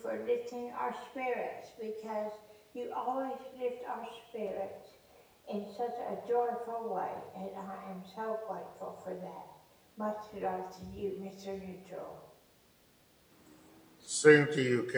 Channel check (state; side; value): identical; both; correlation 1.00